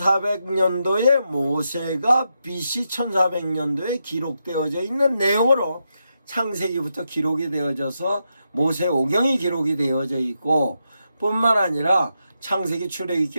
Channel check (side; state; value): both; inverted; correlation -0.84